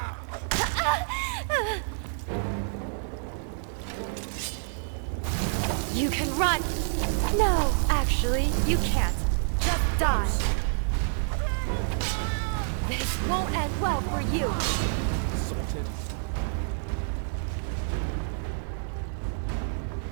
You can run! No, actually, you can't. Just die. This won't end well for you.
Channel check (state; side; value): silent; left; digital silence